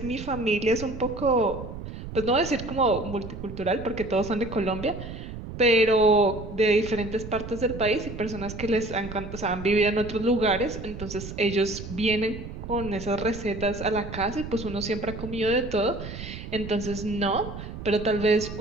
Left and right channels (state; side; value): noise; right; rumble, 10 dB below the sound